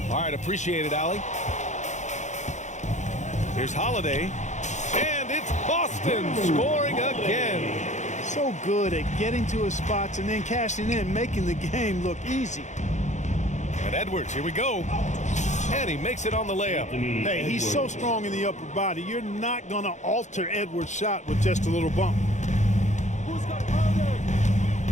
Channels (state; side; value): late; right; 0.34 ms